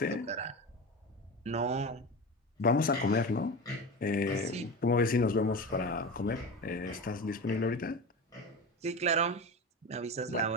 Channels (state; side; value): normal; both; correlation 0.26